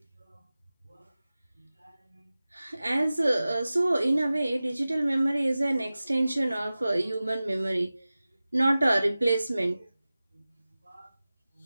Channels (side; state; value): both; inverted; correlation -0.97